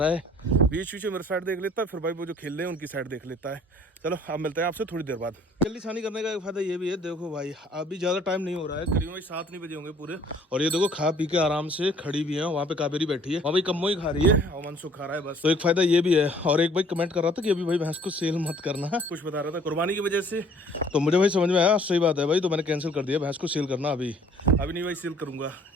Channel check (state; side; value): normal; both; correlation 0.56